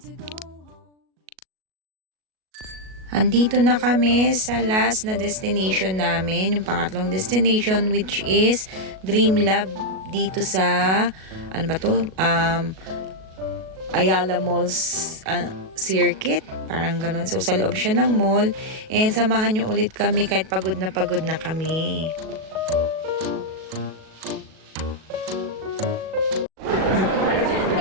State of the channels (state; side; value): late; left; 37 ms